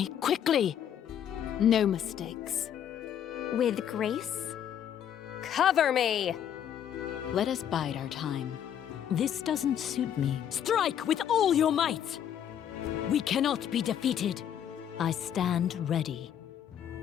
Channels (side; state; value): right; quieter; 9.5 dB